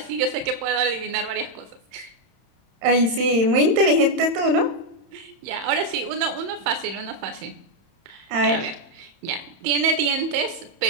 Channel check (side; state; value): left; late; 31 ms